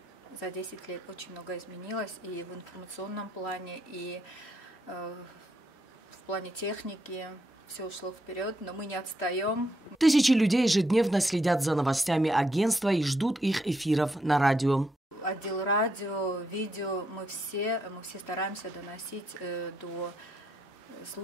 За 10 лет очень много изменилось и в информационном плане, и в плане техники. Все ушло вперед, но мы не отстаем. Тысячи людей ежедневно следят за новостями агентства и ждут их эфиров на радио. Отдел радио, видео, мы все стараемся доносить до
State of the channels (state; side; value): normal; both; correlation 0.78